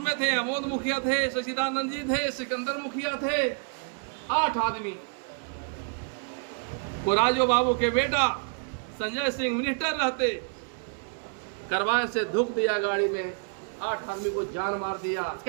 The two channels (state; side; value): quieter; left; 38.5 dB